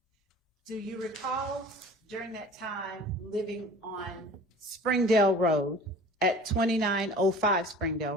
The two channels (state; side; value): normal; both; correlation 0.43